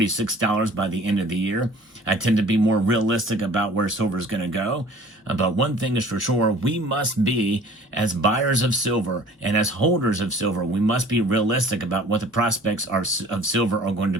by the end of the year. I tend to be more realistic about where silver is going to go. But one thing is for sure, we must be, as buyers of silver and as holders of silver, we must be realistic about what the prospects of silver are going to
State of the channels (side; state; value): both; normal; correlation 0.49